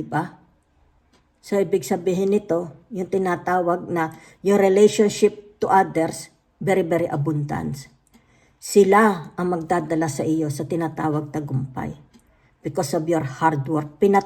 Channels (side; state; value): both; identical; correlation 1.00